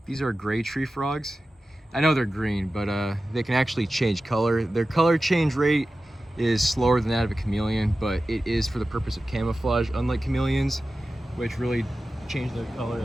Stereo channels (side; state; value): both; normal; correlation 0.94